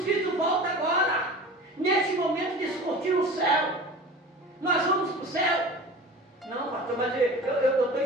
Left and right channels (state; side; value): normal; both; correlation 0.37